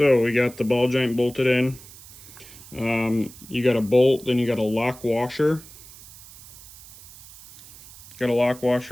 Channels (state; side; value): noise; right; hiss, 19 dB below the sound